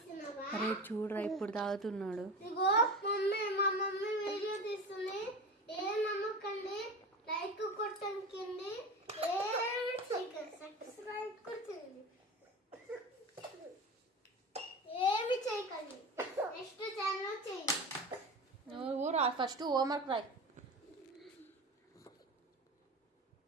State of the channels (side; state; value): both; normal; correlation 0.29